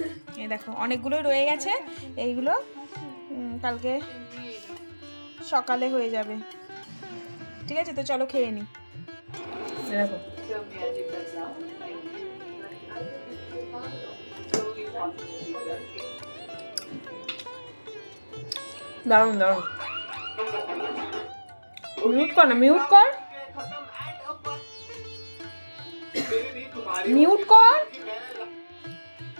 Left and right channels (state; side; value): inverted; both; correlation -1.00